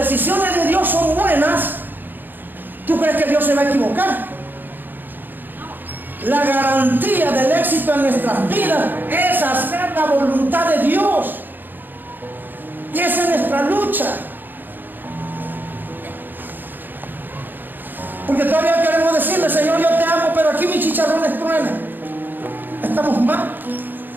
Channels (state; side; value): late; left; 0.091 ms